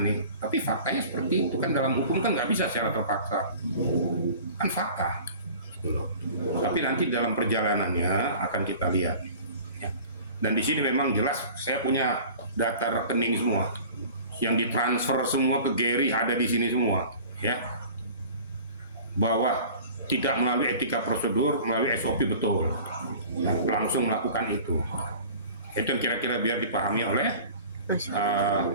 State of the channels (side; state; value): both; inverted; correlation -0.43